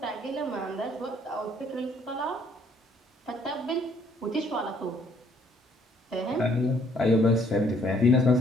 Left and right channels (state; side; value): normal; both; correlation 0.64